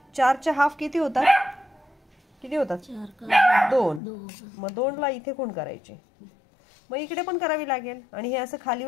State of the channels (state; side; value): drops out; right; at 4.0 s